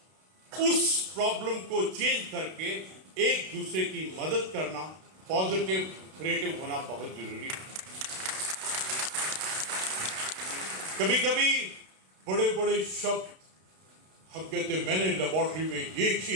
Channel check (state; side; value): late; left; 32 ms